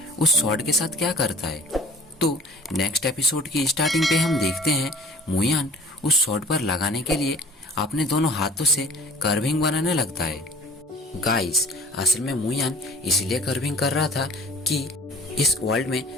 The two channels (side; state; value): both; normal; correlation 0.48